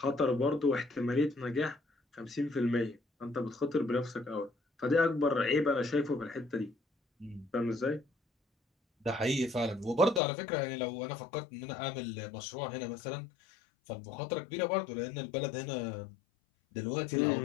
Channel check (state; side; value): drops out; right; at 10.2 s